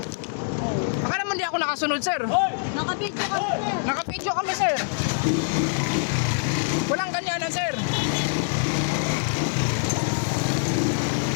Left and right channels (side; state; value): right; silent; digital silence